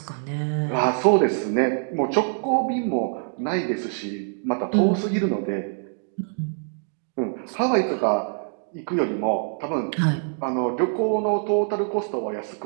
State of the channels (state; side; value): silent; left; digital silence